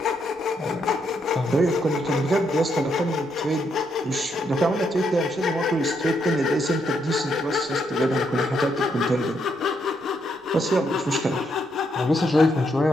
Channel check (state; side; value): normal; both; correlation 0.76